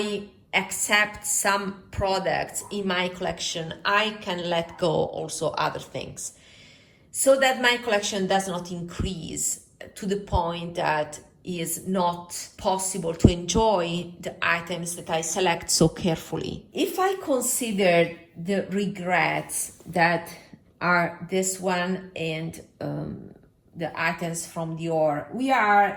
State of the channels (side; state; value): both; identical; correlation 1.00